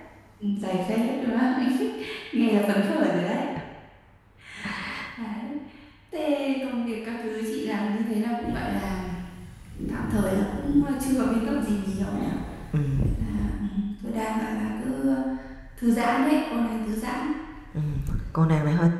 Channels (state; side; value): identical; both; correlation 1.00